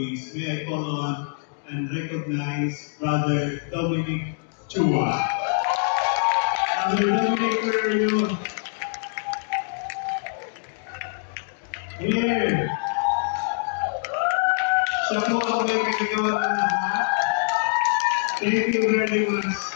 May I call on and recognize Brother Dominic Chua. Brother Dominic, where are you? Here. Siya po ang may kagagawa ng lahat. Thank you very much.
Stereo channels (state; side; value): silent; right; 57 dB below the other